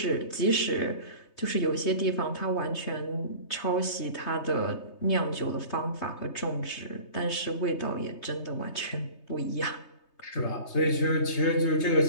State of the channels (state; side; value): late; right; 3.2 ms